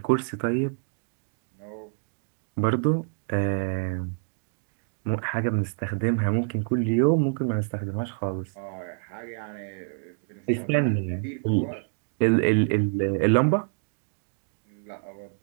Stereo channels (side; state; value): left; silent; 60 dB below the other